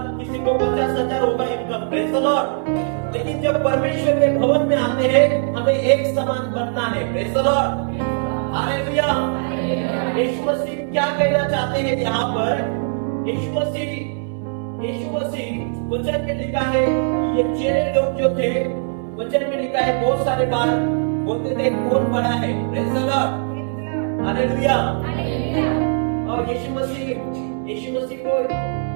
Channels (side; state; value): left; silent; digital silence